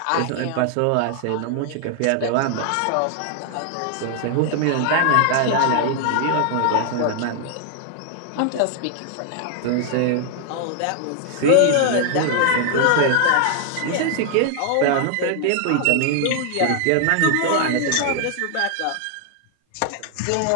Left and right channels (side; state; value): both; different; correlation 0.00